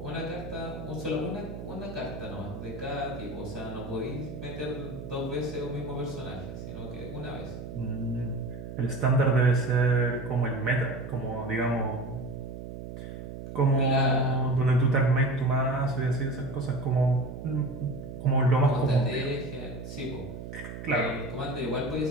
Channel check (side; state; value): right; noise; hum, 10 dB below the sound